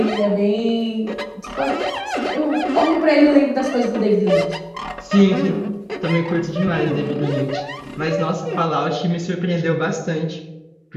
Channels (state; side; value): identical; both; correlation 1.00